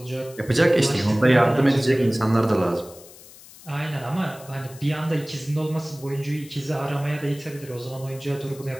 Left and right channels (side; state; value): left; noise; hiss, 20 dB below the sound